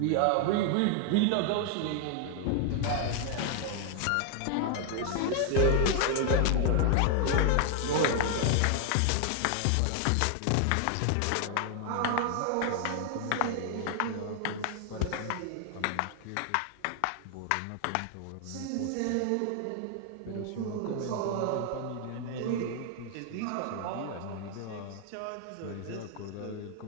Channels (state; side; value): different; both; correlation 0.00